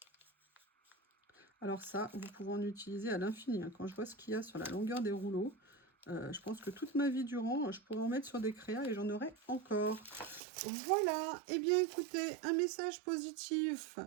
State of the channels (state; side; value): drops out; left; at 10.4 s